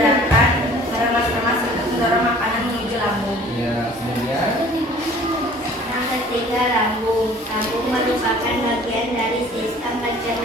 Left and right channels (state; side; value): normal; both; correlation 0.50